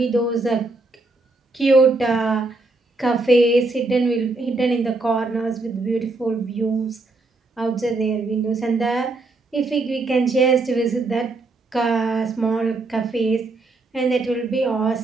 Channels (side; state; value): left; quieter; 3.3 dB